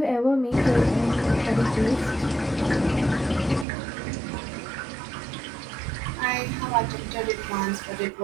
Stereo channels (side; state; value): left; drops out; at 3.7 s